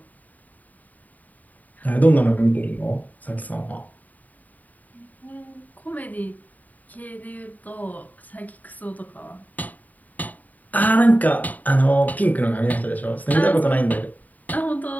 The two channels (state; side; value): late; right; 0.078 ms